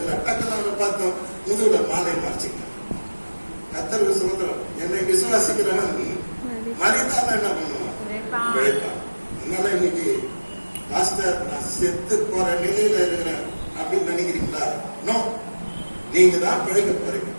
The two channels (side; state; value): both; inverted; correlation -1.00